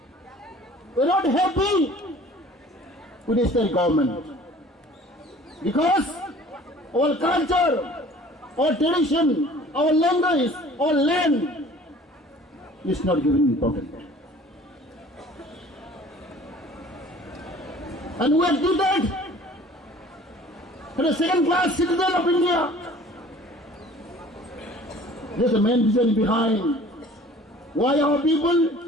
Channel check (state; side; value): normal; both; correlation 0.49